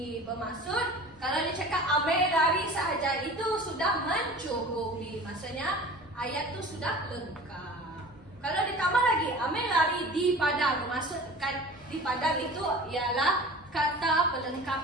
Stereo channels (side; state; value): both; normal; correlation 0.40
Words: Bermaksud, kalau dia cakap ambil lari sahaja, itu sudah mencukupi. Maksudnya, ayat tu sudah lengkap. Kalau ditambah lagi, ambil lari di padang. Bermaksud, kan di padang itu ialah kata